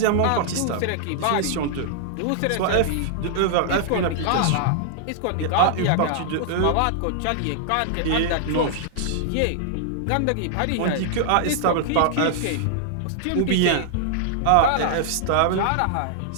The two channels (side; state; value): both; different; correlation -0.01